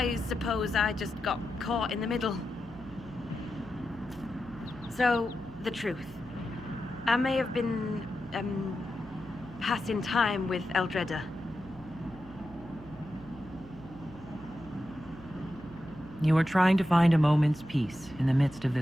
suppose I just got caught in the middle. So, the truth. I may have been, passing time with Eldreda. You were trying to find a moment's peace in the midst of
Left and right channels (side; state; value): right; noise; hum, 18 dB below the sound